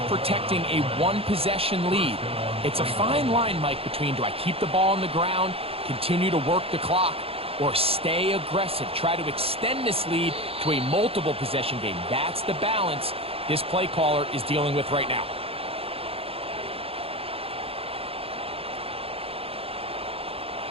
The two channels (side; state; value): left; late; 0.28 ms